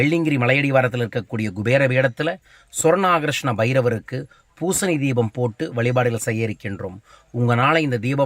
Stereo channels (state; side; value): identical; both; correlation 1.00